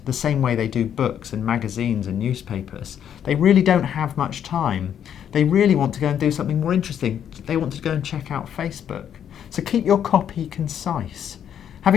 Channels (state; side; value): quieter; right; 9.2 dB